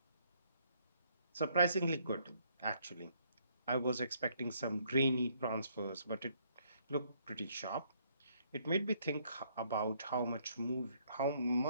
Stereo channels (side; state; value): both; inverted; correlation -0.68